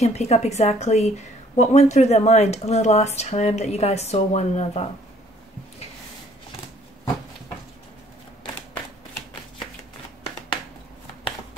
pick up exactly what went through their mind the last time that you guys saw one another.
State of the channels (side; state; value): both; normal; correlation 0.60